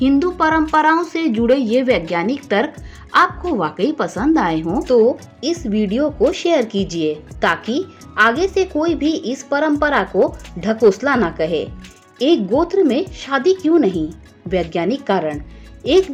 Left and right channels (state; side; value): identical; both; correlation 1.00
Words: हिंदू परंपराओं से जुड़े ये वैज्ञानिक तर्क आपको वाकई पसंद आए हों तो इस वीडियो को शेयर कीजिए ताकि आगे से कोई भी इस परंपरा को ढकोसला ना कहे। एक गोत्र में शादी क्यों नहीं? वैज्ञानिक कारण। एक